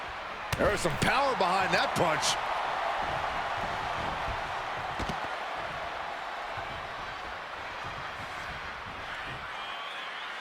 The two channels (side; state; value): both; identical; correlation 1.00